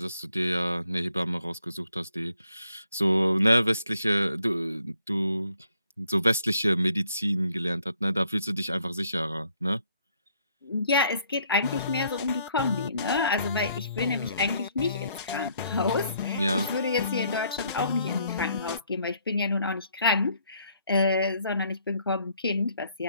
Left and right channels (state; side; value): inverted; both; correlation -0.68